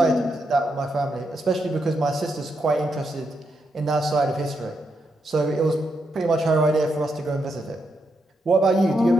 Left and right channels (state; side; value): normal; both; correlation 0.82